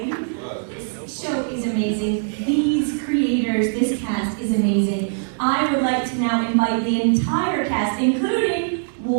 This show is amazing. These creators, this cast is amazing. I would like to now invite the entire cast, including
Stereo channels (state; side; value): silent; left; 63 dB below the other